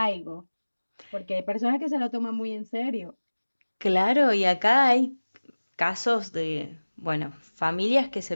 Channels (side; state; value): both; inverted; correlation -1.00